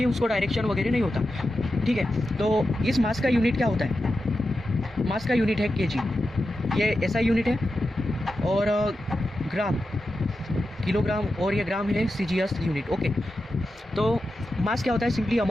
उसको डायरेक्शन वगैरह नहीं होता, ठीक है। तो इस मास का यूनिट क्या होता है, मास का यूनिट है केजी, ये एसआई यूनिट है, और ग्राम किलोग्राम, और ये ग्राम है सीजीएस यूनिट, ओके। तो मास क्या होता है, simply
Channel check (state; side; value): normal; both; correlation 0.90